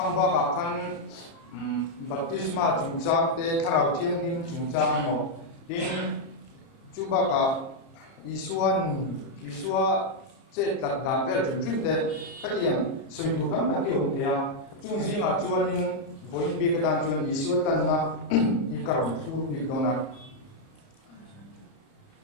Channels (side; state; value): right; late; 30 ms